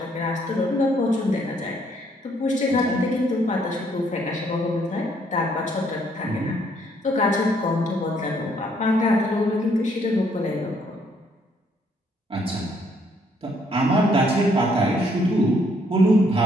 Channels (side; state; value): both; normal; correlation 0.68